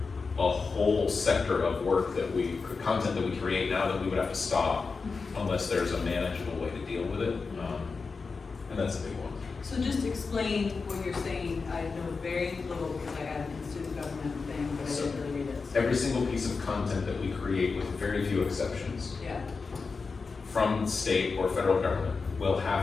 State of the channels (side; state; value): right; quieter; 4.6 dB